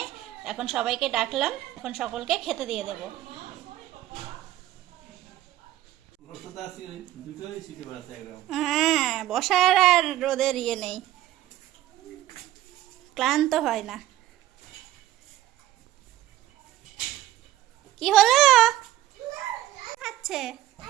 এখন সবাইকে ডাকলাম, এখন সকলকে খেতে দিয়ে দেব। হ্যাঁ, বসার আর রোদের ইয়ে নেই, ক্লান্ত হয় না। কি হলো খাচ্ছে?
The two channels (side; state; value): left; quieter; 14.1 dB